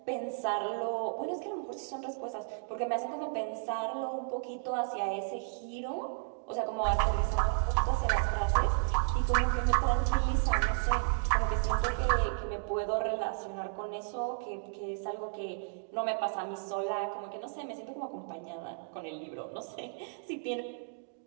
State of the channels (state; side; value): silent; left; digital silence